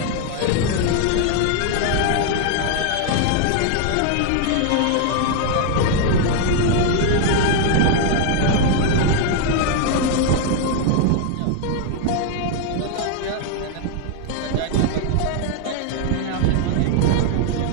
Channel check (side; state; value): both; different; correlation 0.01